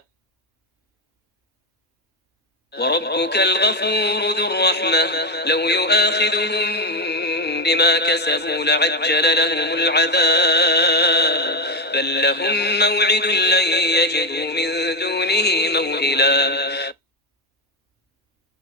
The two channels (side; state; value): both; normal; correlation 0.10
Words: وربك الغفور ذو الرحمة لو يؤاخذهم بما كسبوا لعجل لهم العذاب بل لهم موعد لن يجدوا من دونه موئلا